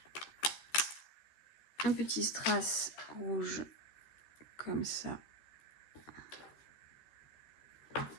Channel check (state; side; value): late; right; 13 ms